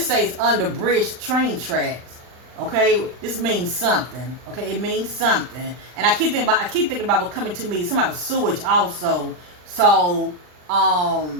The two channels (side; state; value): left; late; 39 ms